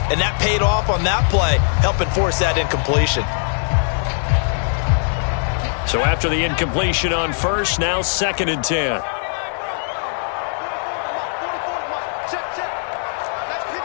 And that paid off on that play, helping force that incompletion. So after the incompletion on 1st, now 2nd and 10.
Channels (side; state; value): right; silent; digital silence